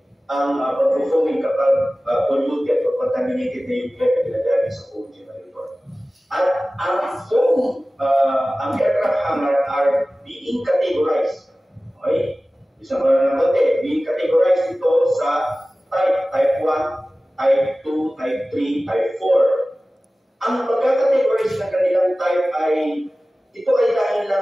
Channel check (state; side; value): normal; both; correlation 0.97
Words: ang pag-foaming kapag polluted or contaminated na yung air na ginagaling sa foam generator. At ang foam, ang aircraft hangar are being categorized. Okay? Isang natin, being categorized ito sa type 1, type 2, type 3, type 4. Ang pagkakategorize ng kanilang type ay, ito ay dahil